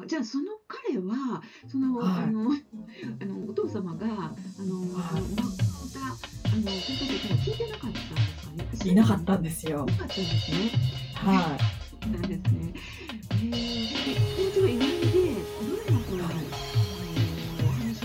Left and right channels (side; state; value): both; identical; correlation 1.00